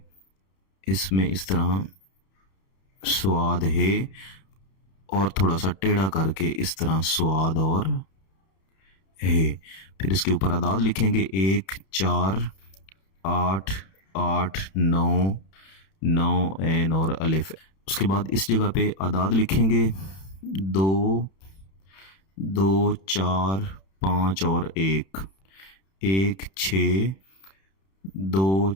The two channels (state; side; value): late; right; 31 ms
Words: इसमें इस तरह स्वाद है और थोड़ा सा टेढ़ा करके इस तरह स्वाद और है। फिर इसके ऊपर आदाद लिखेंगे 1 4 8 8 9 9 एन और अलिफ। उसके बाद इस जगह पे आदाद लिखेंगे 2 2 4 5 और 1 1 6 2